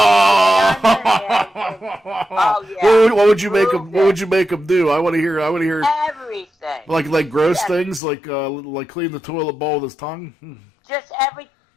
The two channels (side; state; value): right; drops out; at 8.0 s